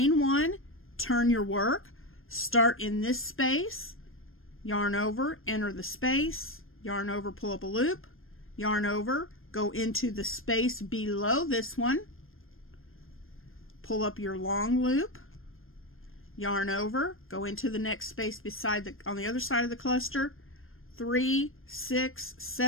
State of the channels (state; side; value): late; right; 0.60 ms